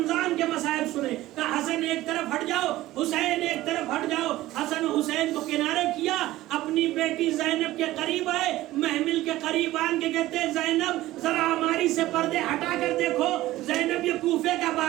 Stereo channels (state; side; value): quieter; left; 16.3 dB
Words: کے مصائب سنے. کہا حسن ایک طرف ہٹ جاؤ, حسین ایک طرف ہٹ جاؤ. حسن حسین کو کنارے کیا, اپنی بیٹی زینب کے قریب آئے, محمل کے قریب آن کے کہتے ہیں زینب ذرا ہماری سے پردے ہٹا کر دیکھو. زینب یہ کوفے کا